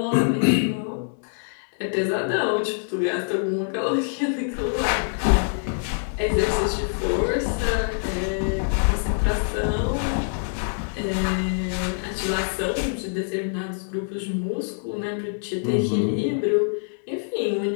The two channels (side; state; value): right; silent; 60 dB below the other